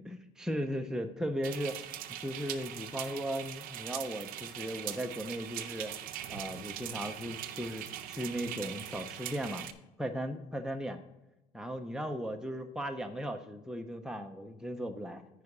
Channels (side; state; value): both; normal; correlation 0.72